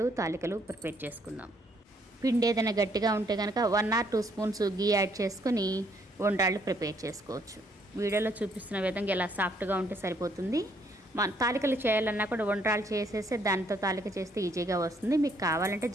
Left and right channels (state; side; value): normal; both; correlation 0.68